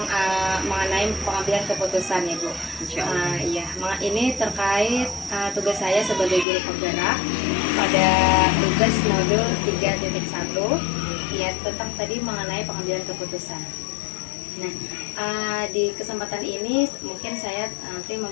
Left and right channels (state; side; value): drops out; right; at 6.5 s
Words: mengenai pengambilan keputusan ya Bu. Iya, ini terkait tugas saya sebagai guru penggerak pada tugas modul 3.1 ya, tentang tadi mengenai pengambilan keputusan. Nah, di kesempatan ini mungkin saya nanti